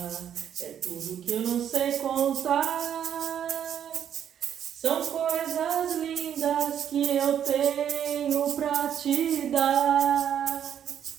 é tudo que eu não sei contar. São coisas lindas que eu tenho pra te dar.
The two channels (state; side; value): quieter; left; 9.2 dB